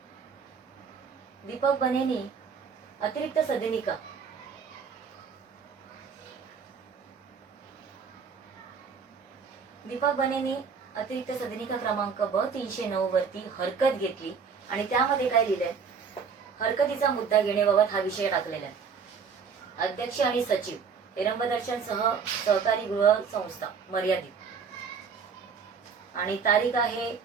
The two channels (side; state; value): left; quieter; 6.0 dB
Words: दीपक बनेनी अतिरिक्त सदनिका क्रमांक ब 309 वरती हरकत घेतली आणि त्यामध्ये काय लिहिलंय, हरकतीचा मुद्दा घेण्याबाबत हा विषय टाकलेला आहे. अध्यक्ष आणि सचिव हेरंबदर्शन सहकारी गृह संस्था मर्यादित आणि तारीख आहे